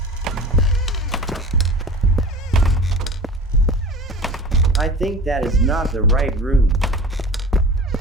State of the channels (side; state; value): both; normal; correlation 0.38